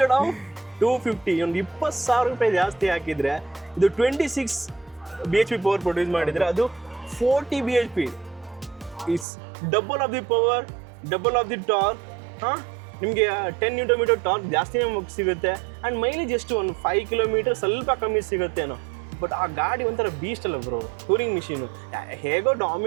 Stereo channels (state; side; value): drops out; left; at 9.2 s